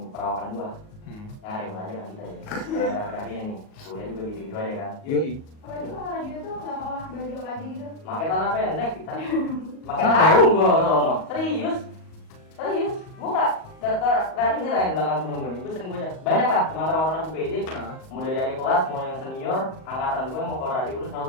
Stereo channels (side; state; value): right; late; 38 ms